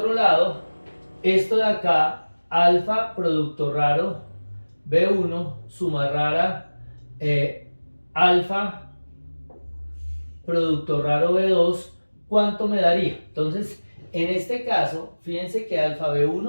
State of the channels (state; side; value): inverted; both; correlation -1.00